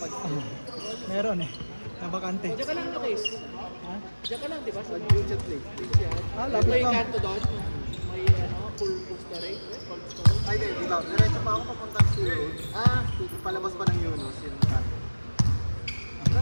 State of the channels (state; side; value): inverted; both; correlation -1.00